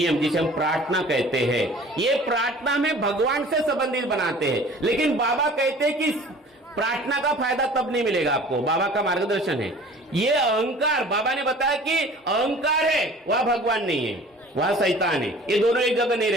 जिसे हम प्रार्थना कहते हैं, ये प्रार्थना में भगवान से संबंधित बनाते हैं। लेकिन बाबा कहते हैं कि प्रार्थना का फायदा तब नहीं मिलेगा आपको, बाबा का मार्गदर्शन है। ये अहंकार, बाबा ने बताया कि अहंकार है, वह भगवान नहीं है, वह शैतान है। ये दोनों एक जगह नहीं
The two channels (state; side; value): normal; both; correlation 0.46